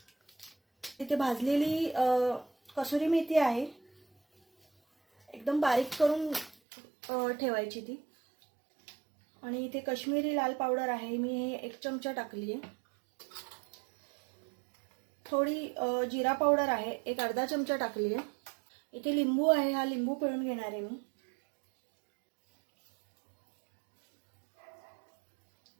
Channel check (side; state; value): left; drops out; at 6.6 s